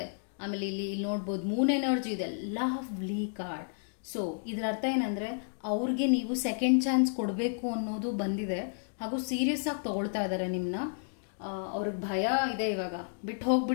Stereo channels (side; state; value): right; silent; digital silence